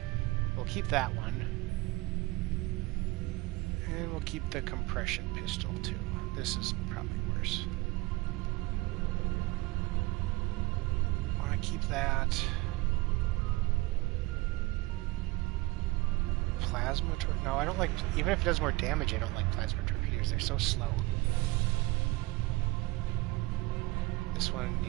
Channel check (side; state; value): left; quieter; 21.9 dB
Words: We'll keep that one. And we'll keep the compression pistol too. This is probably worse. Want to keep that. Plasma torpedoes? No, I don't like... Even if it does more damage, I don't like plasma torpedoes. They're so slow. This one,